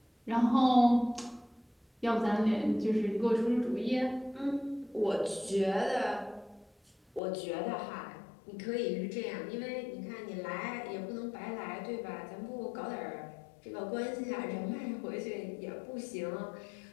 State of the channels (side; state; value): right; drops out; at 7.2 s